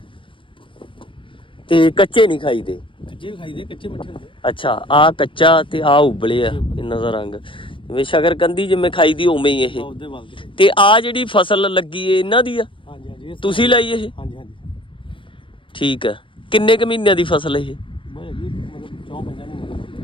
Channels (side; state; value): right; late; 0.25 ms